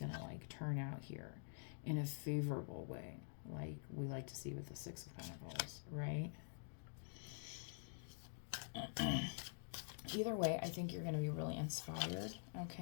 to like turn out here in a favorable way, like we like to see with the Six of Pentacles, right? Either way, I think you're going to be really inspired,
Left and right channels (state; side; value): silent; right; digital silence